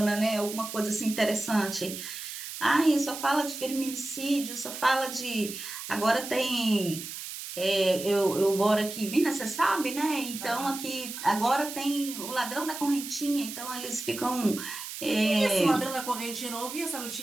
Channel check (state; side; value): noise; right; hiss, 9 dB below the sound